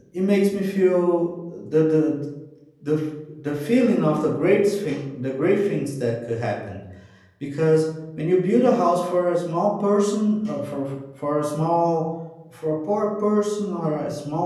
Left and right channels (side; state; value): both; identical; correlation 1.00